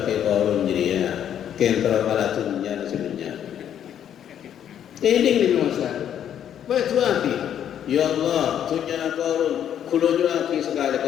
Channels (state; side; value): quieter; right; 9.7 dB